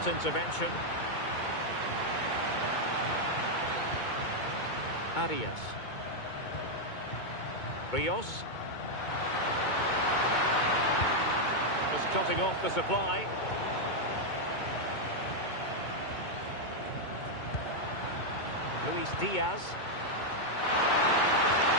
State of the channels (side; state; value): right; late; 2.2 ms